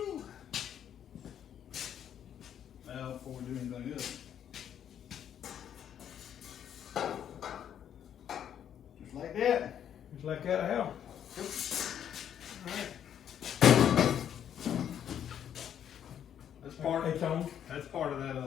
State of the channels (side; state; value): right; quieter; 9.5 dB